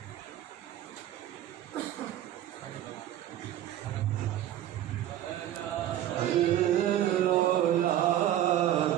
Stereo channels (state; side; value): quieter; left; 12.3 dB